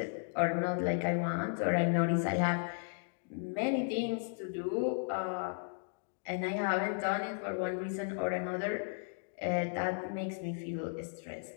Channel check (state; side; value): silent; right; digital silence